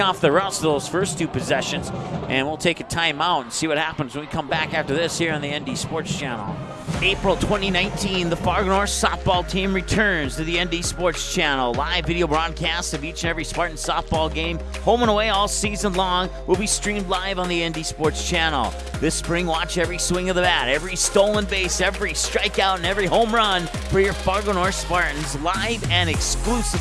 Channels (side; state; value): both; identical; correlation 1.00